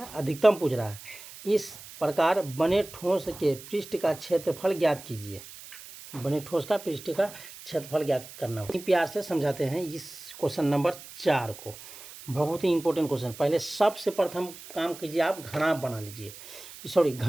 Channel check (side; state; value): right; noise; hiss, 16 dB below the sound